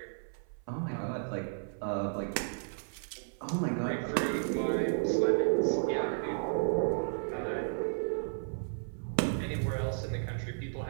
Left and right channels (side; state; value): left; silent; 55 dB below the other